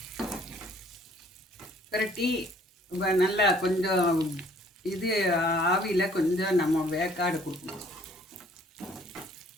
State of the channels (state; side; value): normal; both; correlation 0.59